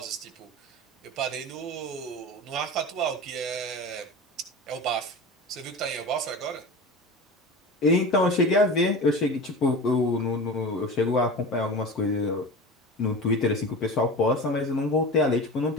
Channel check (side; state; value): both; normal; correlation 0.31